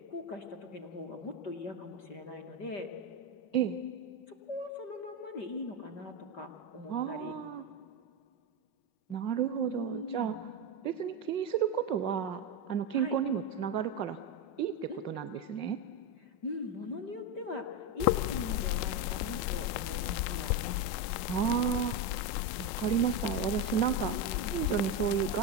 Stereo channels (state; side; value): late; right; 5.5 ms